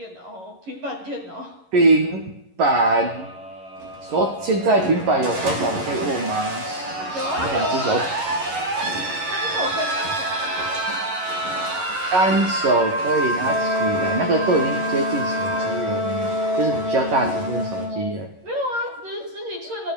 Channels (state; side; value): late; left; 11 ms